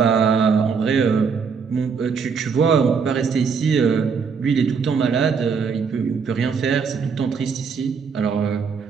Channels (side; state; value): left; quieter; 5.8 dB